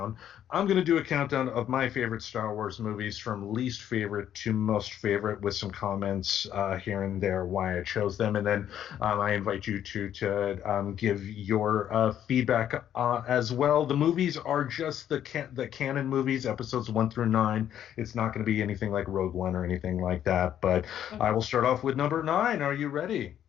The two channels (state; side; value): quieter; right; 10.4 dB